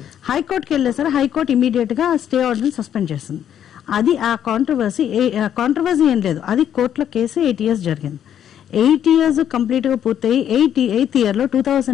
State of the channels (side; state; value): right; quieter; 9.8 dB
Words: వెళ్ళేసారు. హైకోర్టు ఇమీడియట్ గా స్టే ఆర్డర్ సస్పెండ్ చేసింది. అది ఆ కాంట్రవర్సీ ఏం లేదు, అది కోర్టులో కేసు 8 years జరిగింది. 8 years కంప్లీట్ గా పూర్తయి 8th year లో